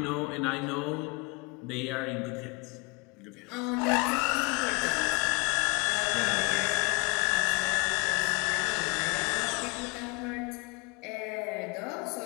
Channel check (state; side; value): quieter; right; 28.9 dB